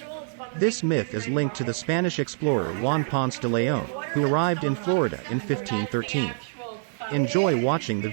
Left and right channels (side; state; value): left; silent; digital silence